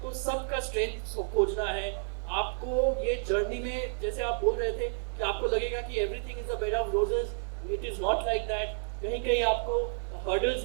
तो सबका स्ट्रेंथ खोजना है. आपको ये जर्नी में, जैसे आप बोल रहे थे कि आपको लगेगा कि everything is a bed of roses, it is not like that. कहीं कहीं आपको हर्डल्स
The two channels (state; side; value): silent; left; digital silence